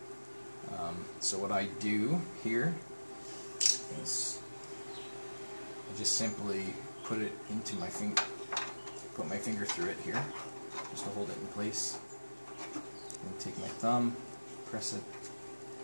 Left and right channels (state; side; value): inverted; both; correlation -1.00